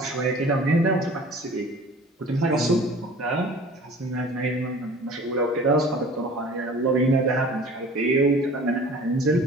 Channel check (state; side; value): normal; both; correlation 0.45